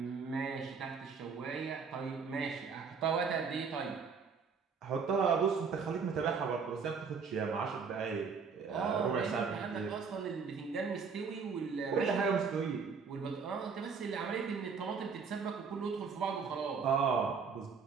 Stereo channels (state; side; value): quieter; left; 5.6 dB